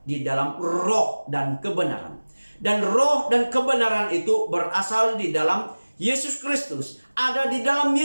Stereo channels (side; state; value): both; inverted; correlation -1.00